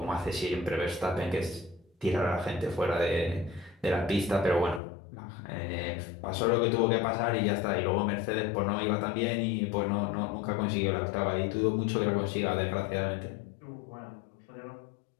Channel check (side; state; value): right; drops out; at 4.8 s